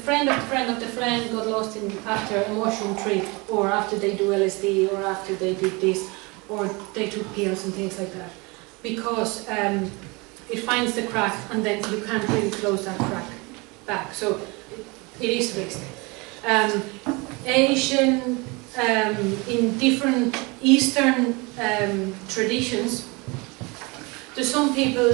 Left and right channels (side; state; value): left; quieter; 27.1 dB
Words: of the friend of the friend got lost after a mushroom trip, or after they do LSD, or after they did this, or they took pills and things like that. Because it finds the crack, and then you can't really close that crack back. So it is risk. Asian, in different Eastern traditions, there's some people